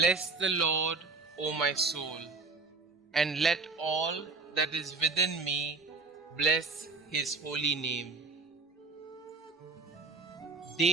the Lord, O my soul, and let all that is within me bless his holy name.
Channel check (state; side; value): quieter; left; 4.1 dB